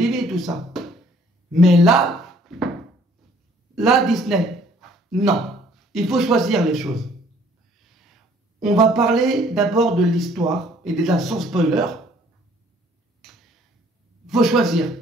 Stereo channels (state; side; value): normal; both; correlation 0.59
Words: tout ça. Mais là, Disney, non. Il faut choisir les choses. On va parler d'abord de l'histoire, et déjà sans spoiler. Il faut choisir.